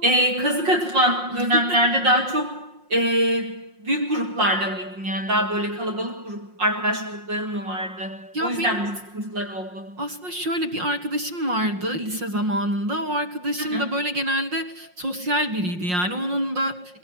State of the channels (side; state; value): left; late; 5.6 ms